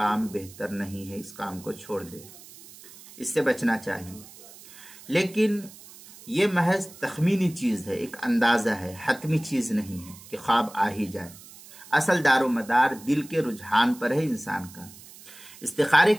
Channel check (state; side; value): noise; right; hiss, 19 dB below the sound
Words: بہتر نہیں ہے، اس کام کو چھوڑ دے، اس سے بچنا چاہیے۔ لیکن یہ محض تخمینی چیز ہے، ایک اندازہ ہے، حتمی چیز نہیں ہے کہ خواب آ ہی جائے۔ اصل دار و مدار دل کے رجحان پر ہے انسان کا۔ استخارے